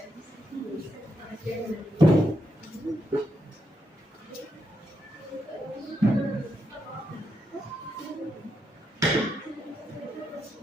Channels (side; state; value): both; normal; correlation 0.81